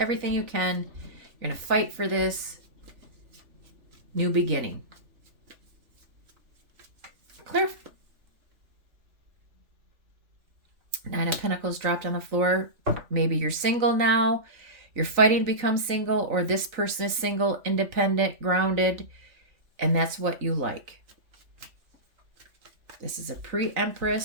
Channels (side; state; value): left; late; 3.4 ms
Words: you can. You're going to fight for this new beginning. Clear. Nine of Pentacles dropped on the floor. Maybe you're single now. You're fighting to become single, or this person is single, independent, grounded, and that's what you like. This is a